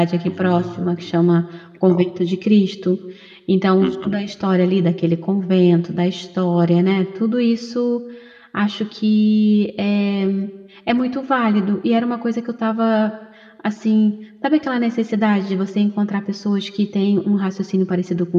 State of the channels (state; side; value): identical; both; correlation 1.00